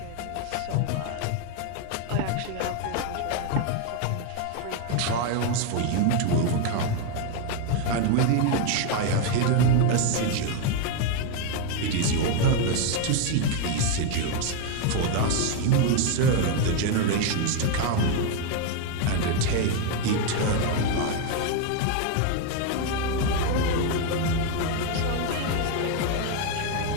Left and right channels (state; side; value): different; both; correlation 0.01